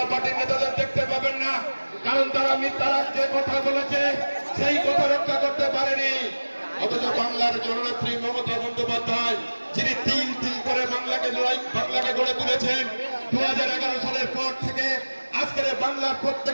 পার্টির নেতাদের দেখতে পাবেন না, কারণ তারা মিথ্যা রাজ্যে কথা বলেছে, সেই কথা রক্ষা করতে পারেনি। অথচ বাংলার জননেত্রী মমতা বন্দ্যোপাধ্যায়, যিনি তিল তিল করে বাংলাকে গড়ে তুলেছেন, 2011 সালের পর থেকে আজকের বাংলার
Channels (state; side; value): inverted; both; correlation -1.00